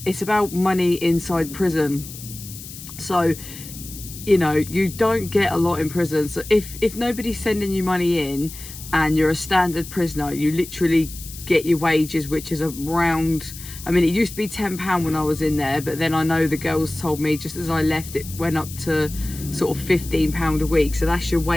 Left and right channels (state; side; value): noise; left; hiss, 13 dB below the sound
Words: it's about money inside prison. So, you know, you don't get a lot in prison. So if nobody's sending you money in and you're a standard prisoner, you literally get your wages, which is around, I mean, it used to be £10 when I was in there, but then I know the girls told me just as I left, it went up to sort of £15 a week. So that's your